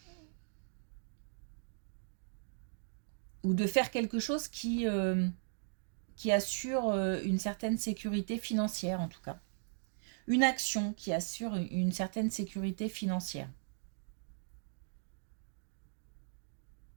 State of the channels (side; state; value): left; silent; digital silence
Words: de faire quelque chose qui assure une certaine sécurité financière, en tout cas. Une action qui assure une certaine sécurité financière.